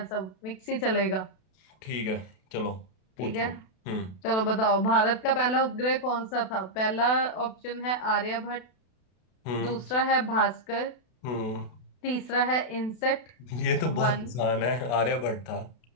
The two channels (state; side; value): late; right; 32 ms